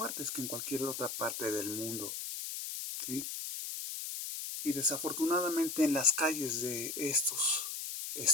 que en cualquier otra parte del mundo, ¿sí? Y desafortunadamente en las calles de estos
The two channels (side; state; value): left; noise; hiss, 5 dB below the sound